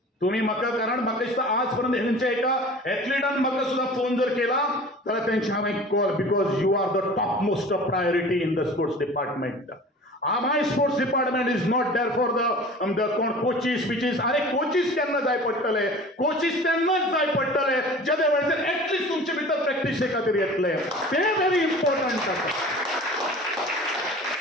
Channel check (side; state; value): both; normal; correlation 0.41